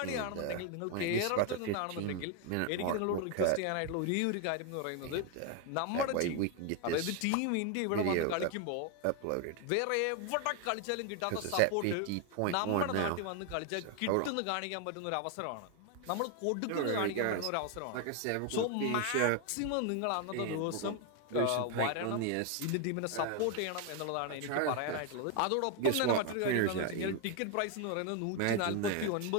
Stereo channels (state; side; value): different; both; correlation 0.01